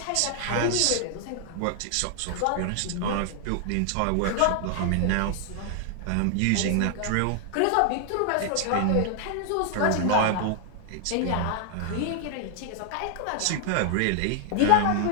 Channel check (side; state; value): both; different; correlation 0.00